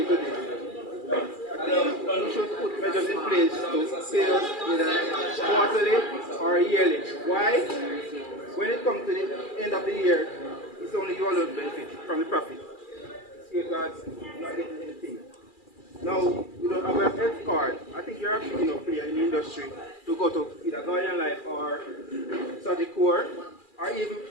to this. I think you should put measures in place to pay us either quarterly or yearly. Why? When it comes to the end of the year, it's only you alone benefit from the profit. Security guards not getting anything. Now, you don't have a health card. I think you're actually player in the industry to go to either Guardian Life or Sagicor, or even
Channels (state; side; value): late; right; 2.4 ms